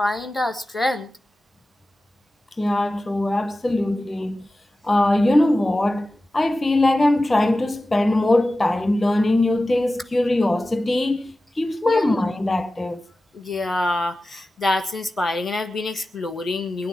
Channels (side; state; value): both; normal; correlation 0.95